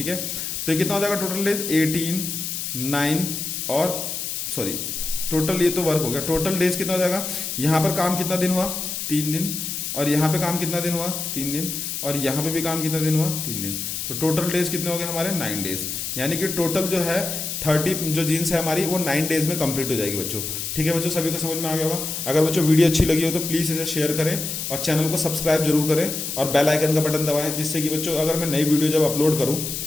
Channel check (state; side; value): noise; left; hiss, 4 dB below the sound